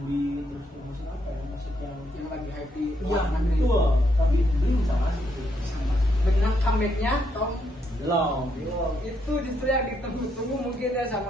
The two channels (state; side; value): normal; both; correlation 0.76